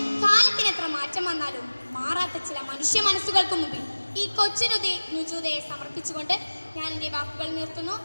കാലത്തിനെത്ര മാറ്റം വന്നാലും മാറാത്ത ചില മനുഷ്യ മനസ്സുകൾക്ക് മുമ്പിൽ ഈ കൊച്ചു നുജൂദയെ സമർപ്പിച്ചുകൊണ്ട് ഞാൻ എൻ്റെ വാക്കുകൾ നിർത്തുന്നു.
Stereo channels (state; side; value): inverted; both; correlation -1.00